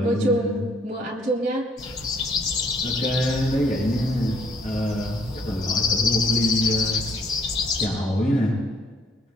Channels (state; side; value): normal; both; correlation 0.65